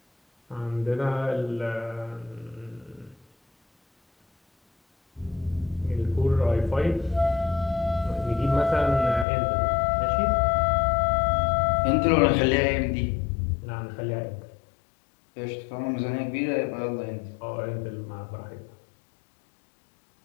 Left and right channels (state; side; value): drops out; right; at 9.2 s